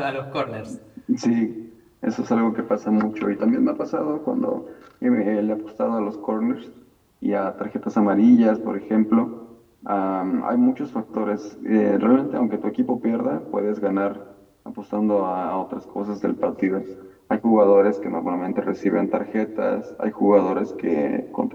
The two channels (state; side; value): identical; both; correlation 1.00